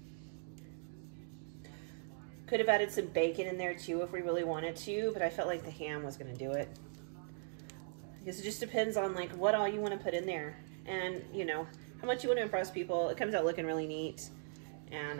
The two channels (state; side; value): silent; left; digital silence